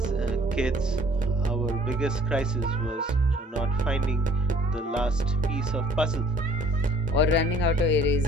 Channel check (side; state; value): both; normal; correlation 0.55